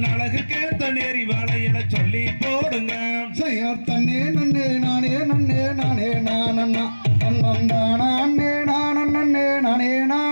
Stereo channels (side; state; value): both; inverted; correlation -1.00